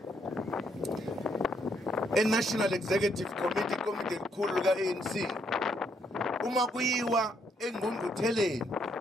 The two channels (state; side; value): normal; both; correlation 0.73